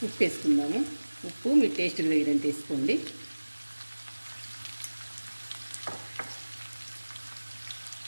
ఉప్పు వేసుకుందాము. ఉప్పు మీ టేస్ట్కి తగినంత వేసుకోండి.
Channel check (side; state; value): both; inverted; correlation -1.00